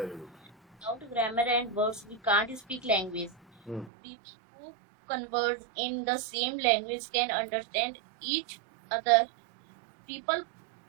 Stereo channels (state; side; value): drops out; left; at 3.9 s